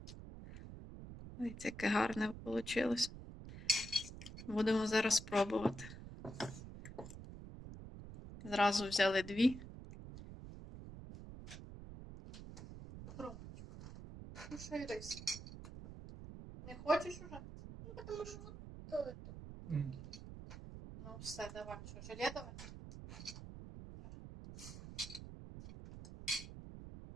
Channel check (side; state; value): right; noise; rumble, 12 dB below the sound